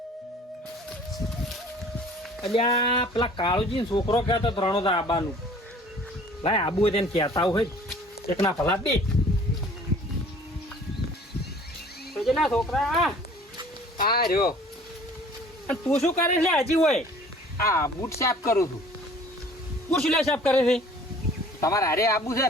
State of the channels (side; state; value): both; normal; correlation 0.50